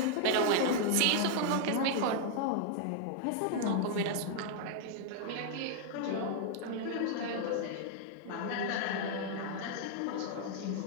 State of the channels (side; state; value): both; different; correlation -0.01